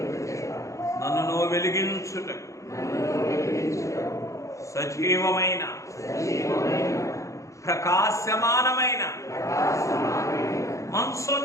నన్ను వెలిగించుటకు సజీవమైన ప్రకాశమానమైన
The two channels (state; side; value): late; right; 0.15 ms